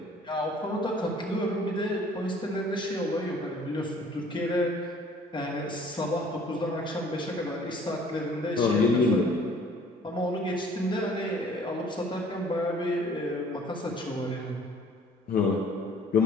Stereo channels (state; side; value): normal; both; correlation 0.55